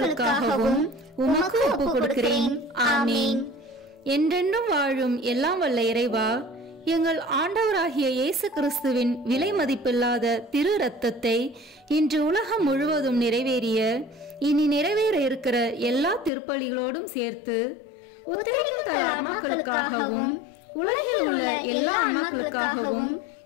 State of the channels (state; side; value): drops out; right; at 16.3 s